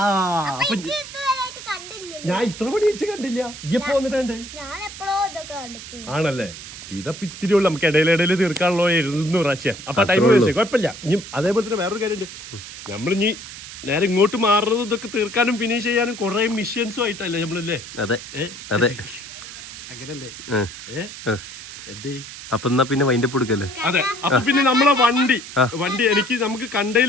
ഞാൻ ഇത്ര പണി വെച്ച് കണ്ടില്ല. ഇപ്പൊ വന്നിട്ടുണ്ട് ആണല്ലേ? ഇതപ്പൊ ഇത്തിരി ഉള്ളു. നമുക്ക് ഇടയിലിടയിൽ തീർക്കാനുള്ളോ 200 പ്രാവശ്യം. അപ്പൊ ടൈം വേസ്റ്റ് കുഴപ്പമില്ല. ഇനി അതേപോലെ തന്നെ വേറൊരു കാര്യമുണ്ട്. നമ്മളിനി നേരെ ഇങ്ങോട്ട് മാറുന്നത് ഇതൊക്കെ തീർക്കാനും ഫിനിഷ് ചെയ്യാനും കുറെ മിഷ്യൻസും ആയിട്ടല്ലേ നമ്മളല്ലേ? അതെ അതെ, അങ്ങനല്ലേ? അപ്പൊ എന്നാ പിന്നെ വൈൻഡപ്പ് കൊടുക്കല്ലേ? അതെ. അപ്പൊ പിന്നെ നമ്മളെ വണ്ടി നമുക്ക്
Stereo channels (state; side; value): noise; right; hiss, 13 dB below the sound